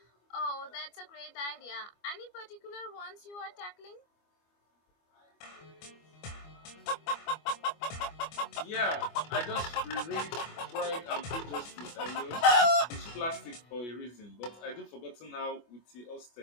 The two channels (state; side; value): late; right; 25 ms